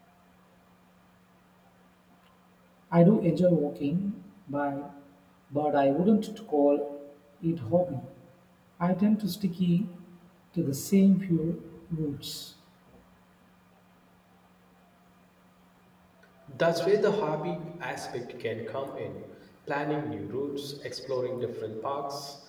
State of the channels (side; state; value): both; identical; correlation 1.00